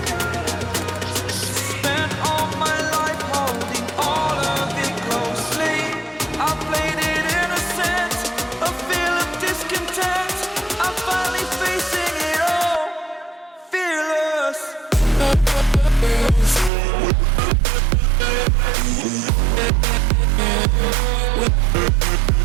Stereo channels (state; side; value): drops out; left; at 16.7 s